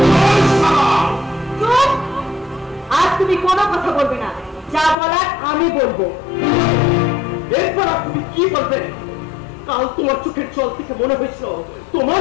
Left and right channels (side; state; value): right; drops out; at 5.0 s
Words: আজ তুমি কোনো কথা বলবে না, যা বলার আমি বলবো। এরপর আর তুমি কি বলবে? কাল তোমার চোখের জল থেকে মনে হয়েছিল তোমার